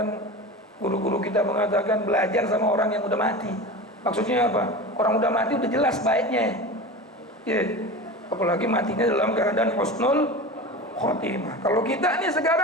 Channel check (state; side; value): normal; both; correlation 0.30